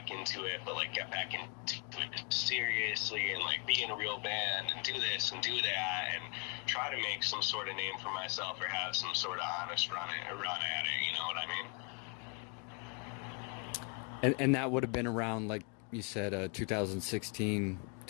into it, but like get back into it seriously and like be in a real band and do this and do that and try to make some sort of name for myself or have some sort of honest run at it, you know what I mean? And that would have been around, like you said, 2016,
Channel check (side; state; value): right; quieter; 34.8 dB